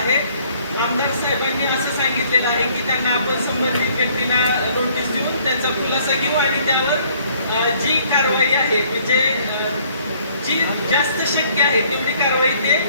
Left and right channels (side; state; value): both; inverted; correlation -0.60